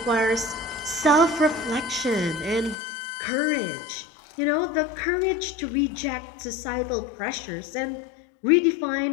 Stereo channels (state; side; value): drops out; right; at 2.8 s